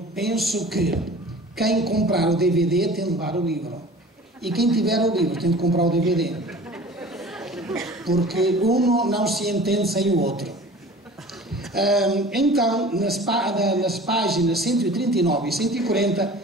penso que quem comprar o DVD tem de levar o livro. E quem tiver o livro tem de comprar o DVD. Porque um não se entende sem o outro. Então, nas páginas 139 e 140,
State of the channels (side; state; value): both; normal; correlation 0.43